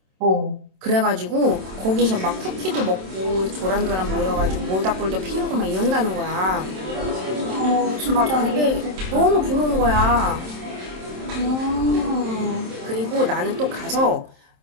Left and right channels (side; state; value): left; late; 27 ms